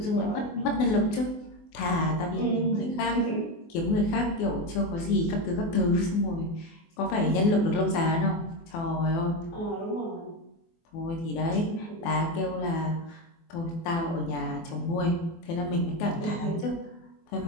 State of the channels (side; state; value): right; late; 24 ms